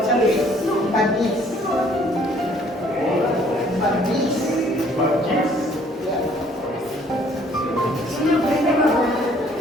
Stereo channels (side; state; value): both; normal; correlation 0.60